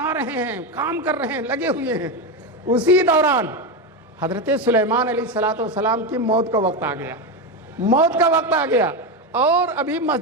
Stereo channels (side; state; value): both; normal; correlation 0.13